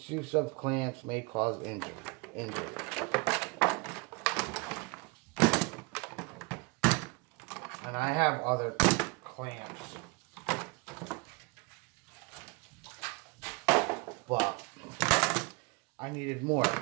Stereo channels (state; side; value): quieter; left; 28.3 dB